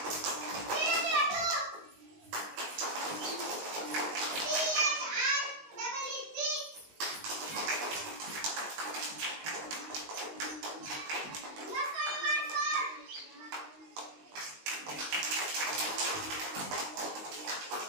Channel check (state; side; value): late; left; 19 ms